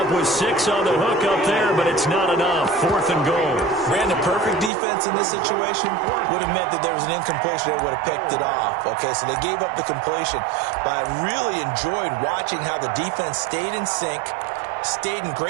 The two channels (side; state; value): left; drops out; at 4.7 s